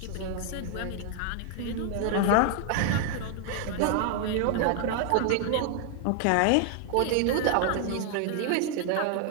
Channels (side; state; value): both; different; correlation 0.00